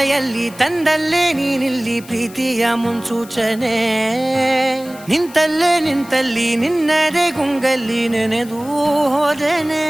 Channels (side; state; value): left; noise; hiss, 20 dB below the sound